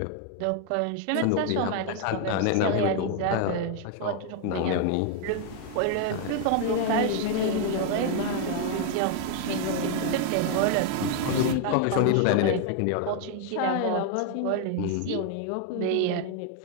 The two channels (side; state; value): both; different; correlation 0.00